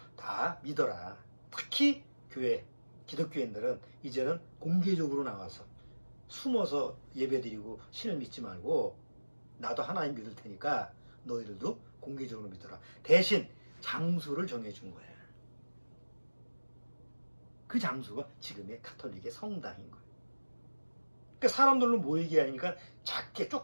다 믿어라. 특히 교회, 기독교인들은 이제는 공개적으로 나와서 숨어서 예배드리고 신을 믿지 말고 나도 하나님 믿을 테니까 너희들도 공개적으로 믿어라. 대신 장소를 정해준 거예요. 그 장소가 지금의 카톨릭의 성당인 거예요. 그러니까 사람들로 모이게 하니까 작게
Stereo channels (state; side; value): inverted; both; correlation -1.00